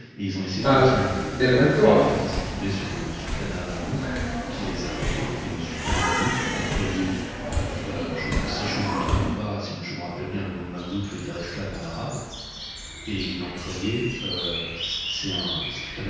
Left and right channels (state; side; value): identical; both; correlation 1.00